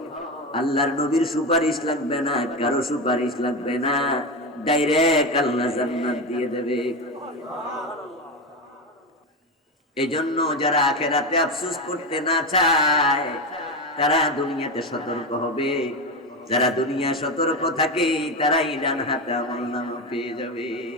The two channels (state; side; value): normal; both; correlation 0.17